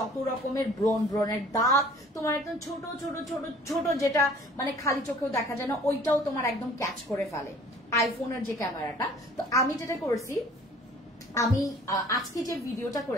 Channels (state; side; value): normal; both; correlation 0.51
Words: রকমের ব্রণের দাগ, তোমার একদম ছোট ছোট ছোট ছোট যেটা মানে খালি চোখেও দেখা যায় না, ওইটাও তোমার একদম ক্যাচ করে ফেলে আইফোনের যে ক্যামেরাটা। তো আমি যেটা করছি, আমি আজকে যে ভিডিওটা